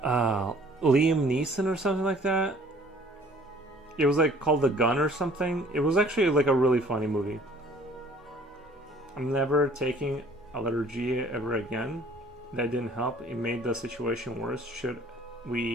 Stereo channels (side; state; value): both; normal; correlation 0.55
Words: Neeson or something like that. It was like called The Gun or something. It was actually like a really funny movie. I'm never taking allergy ever again. That didn't help. It made the situation worse. Should